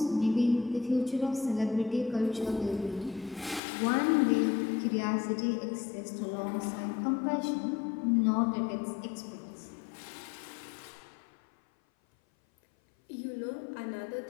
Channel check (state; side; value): drops out; right; at 3.6 s